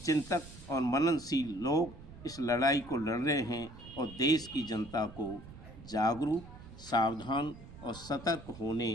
चिंतक और मननशील लोग इस लड़ाई को लड़ रहे हैं और देश की जनता को जागरूक, सावधान और सतर्क होने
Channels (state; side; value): noise; right; rumble, 16 dB below the sound